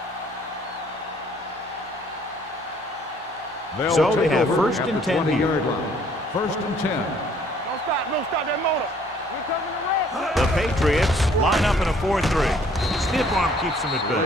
So they have first and 10 here. First and 10. Don't stop that motor. We're coming to rest. The Patriots line up in a 4-3. Stiff arm keeps them at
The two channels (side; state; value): both; normal; correlation 0.60